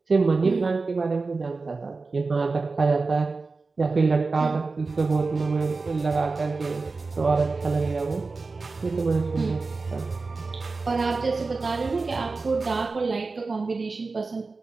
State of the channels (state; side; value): quieter; left; 4.0 dB